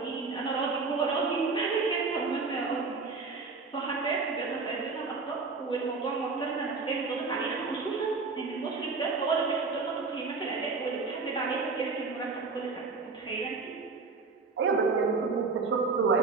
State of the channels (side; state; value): left; quieter; 4.3 dB